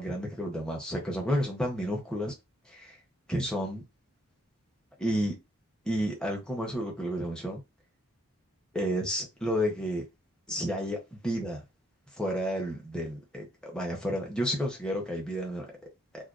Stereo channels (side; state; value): both; normal; correlation 0.72